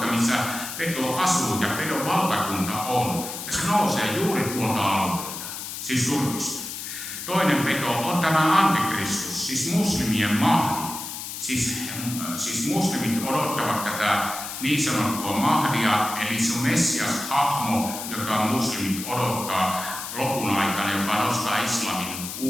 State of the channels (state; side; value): noise; left; hiss, 8 dB below the sound